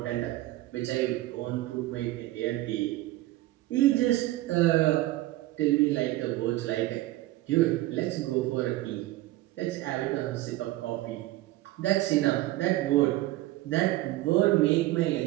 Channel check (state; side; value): quieter; left; 17.0 dB